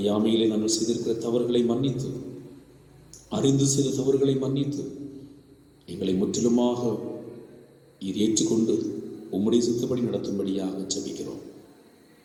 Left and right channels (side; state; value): both; identical; correlation 1.00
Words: நாங்கள் செய்திருக்கிற தவறுகளை மன்னித்து, அறிந்து செய்த தவறுகளை மன்னித்து எங்களை முற்றிலுமாக இது ஏற்றுக்கொண்டு உம்முடைய சித்தப்படி நடத்தும்படியாக ஜெபிக்கிறோம்.